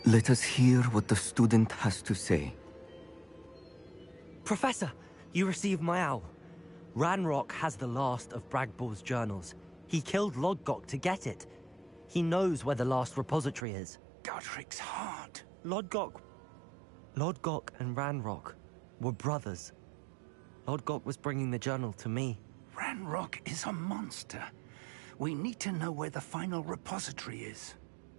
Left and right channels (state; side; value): drops out; left; at 13.7 s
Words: Let us hear what the student has to say. Professor, you received my owl. Ranrock has the last of Bragbor's journals. He killed Lodgok to get it. He knows where the last repository is. Godric's heart. Lodgok and Ranrock were brothers. Lodgok was bringing the journal to me. Ranrock is a monster. We need to know where the final repository is.